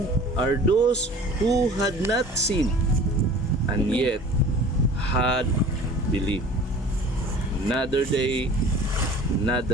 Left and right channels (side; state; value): both; normal; correlation 0.44